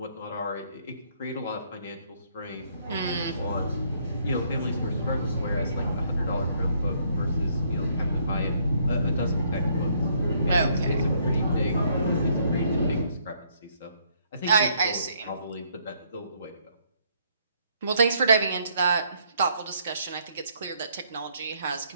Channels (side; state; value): both; inverted; correlation -0.69